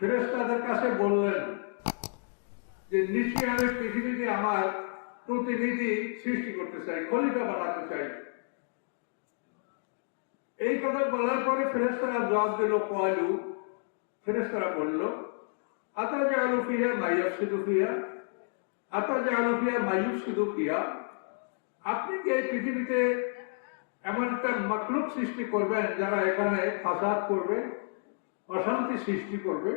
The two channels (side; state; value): right; silent; 58 dB below the other